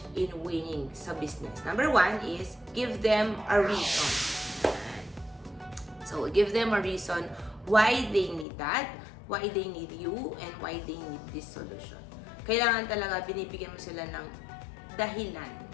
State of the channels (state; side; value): drops out; right; at 8.5 s